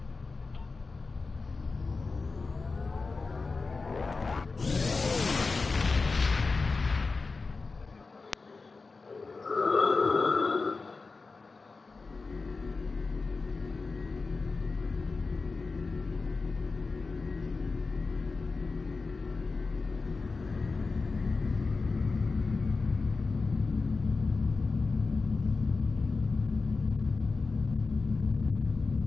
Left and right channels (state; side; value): quieter; right; 4.1 dB